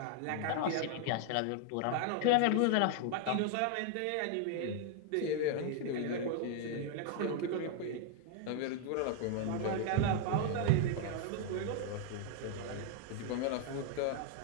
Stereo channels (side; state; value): both; different; correlation 0.00